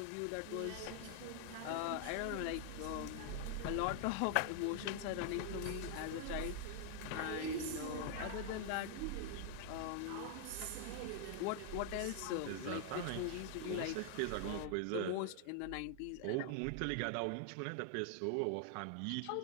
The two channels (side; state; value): both; different; correlation 0.00